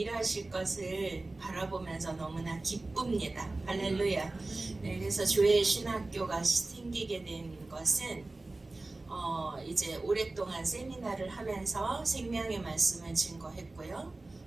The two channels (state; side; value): quieter; left; 3.1 dB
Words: 것을 바라보면서 너무나 기쁩니다. 할렐루야. 네, 그래서 교회 신학교가 생기게 된 것은 이제 오랫동안 세미나를 하면서 생명의 말씀을 증거했고요.